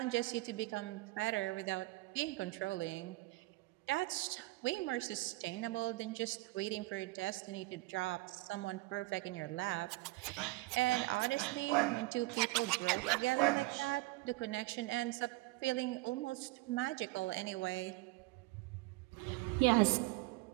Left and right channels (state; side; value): quieter; left; 21.2 dB